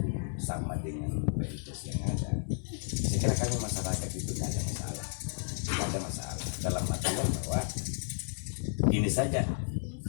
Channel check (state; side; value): silent; right; digital silence